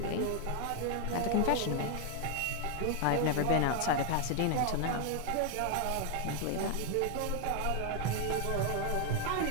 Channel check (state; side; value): different; both; correlation 0.00